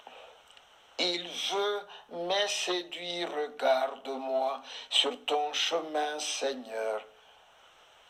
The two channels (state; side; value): identical; both; correlation 1.00